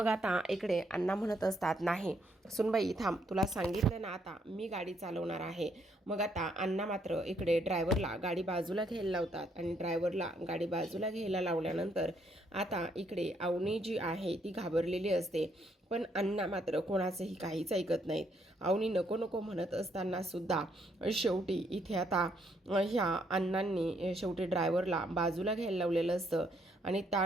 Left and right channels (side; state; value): both; normal; correlation 0.72